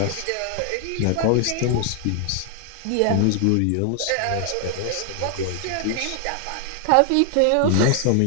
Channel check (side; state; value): both; different; correlation 0.00